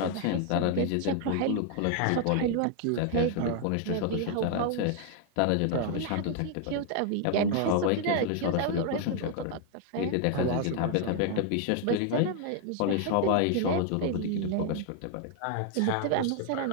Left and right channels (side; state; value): both; different; correlation 0.00